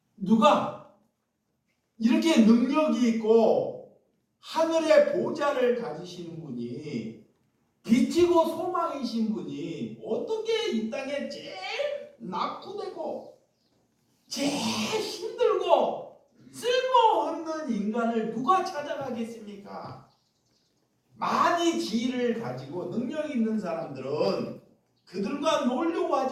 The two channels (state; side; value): identical; both; correlation 1.00